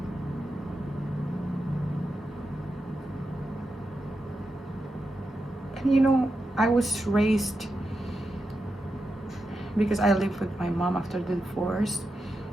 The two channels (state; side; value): normal; both; correlation 0.88